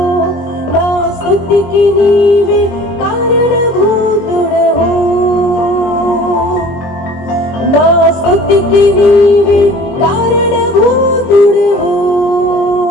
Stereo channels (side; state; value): right; late; 23 ms